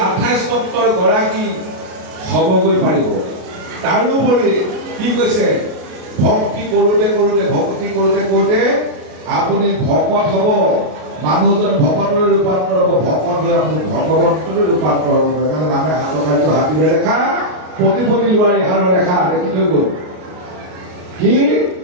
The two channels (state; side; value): late; left; 33 ms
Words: 28 তত্ত্বৰ গৰাকী হ'বগৈ পাৰিব তাৰোপৰি কি কৈছে ভক্তি কৰোঁতে কৰোঁতে ভক্তি কৰোঁতে কৰোঁতে আপুনি ভকত হ'ব মানুহজন ভকতলৈ ৰূপান্তৰ হ'ব ভকত হৈ আপুনি ভগৱন্তলৈ ৰূপান্তৰ হ'ব সেইকাৰণে নামে হাতৰ কাৰ্য হাতীৰে ৰেখা প্ৰতিপতি লোৱাৰ ইহাৰৰ ৰেখা দেখি থৈ গ'ল কি